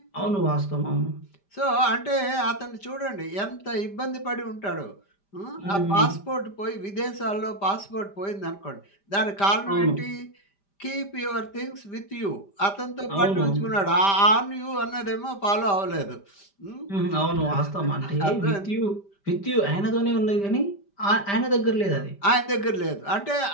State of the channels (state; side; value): late; right; 5.1 ms